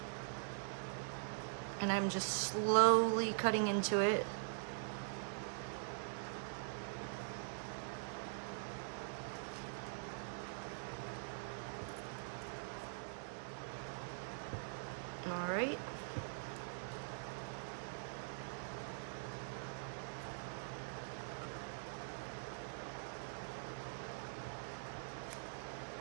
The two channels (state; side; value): silent; left; digital silence